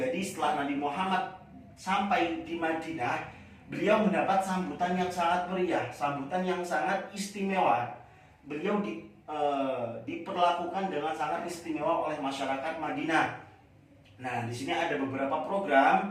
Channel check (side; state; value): both; identical; correlation 1.00